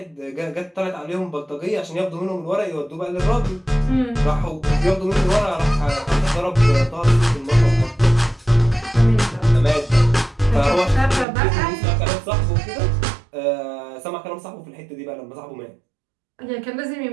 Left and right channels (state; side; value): drops out; left; at 11.2 s